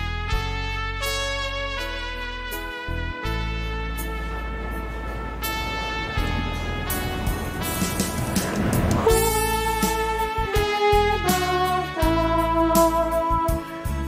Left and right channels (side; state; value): both; identical; correlation 1.00